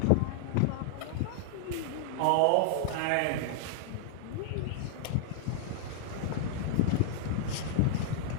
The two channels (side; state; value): both; different; correlation -0.01